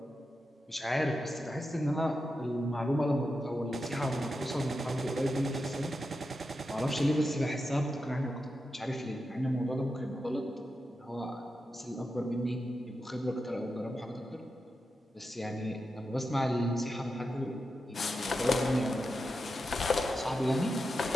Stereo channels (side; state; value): both; normal; correlation 0.88